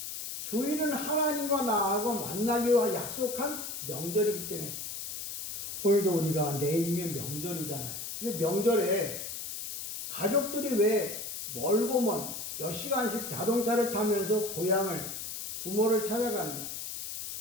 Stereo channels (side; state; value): left; noise; hiss, 7 dB below the sound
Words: 주일은 하나님과 나하고 만나기로 약속한 명절이기 때문에 오늘도 우리가 내일이면 명절이잖아요. 근데 명절에 가족들이 왜 멀고 먼 몇 시간씩 자동차를 타면서 고향을 부모를 찾아가느냐?